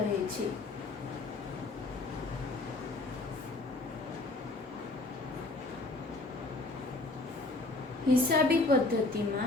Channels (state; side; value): quieter; right; 3.1 dB